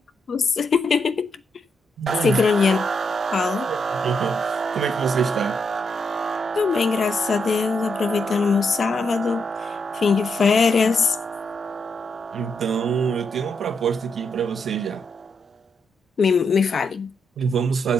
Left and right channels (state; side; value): normal; both; correlation 0.80